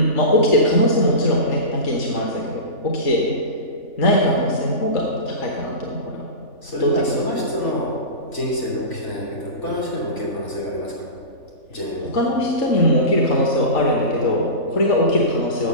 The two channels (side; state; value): right; late; 3.4 ms